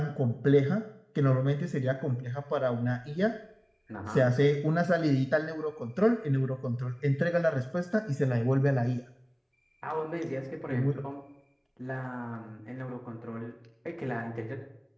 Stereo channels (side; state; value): both; identical; correlation 1.00